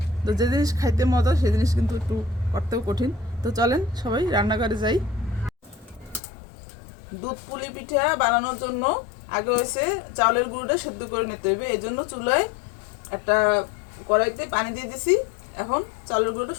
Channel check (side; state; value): right; drops out; at 6.2 s